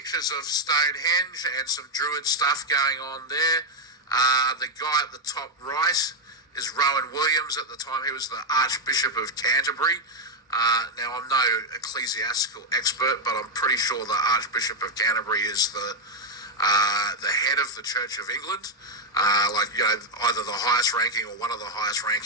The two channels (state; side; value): normal; both; correlation 0.05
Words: of Stonehenge and some druid stuff going on there. The guy at the top right is Rowan Williams. At the time, he was the Archbishop of Canterbury. Now, I'm no ecclesiastical expert, but I'm pretty sure the Archbishop of Canterbury is the head of the Church of England. Either the highest ranking or one of the highest